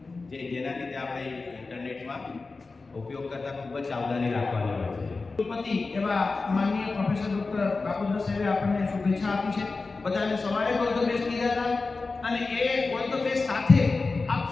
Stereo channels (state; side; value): quieter; right; 3.9 dB